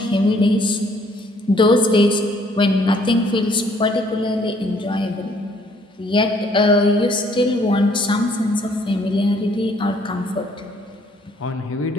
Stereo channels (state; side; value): normal; both; correlation 0.63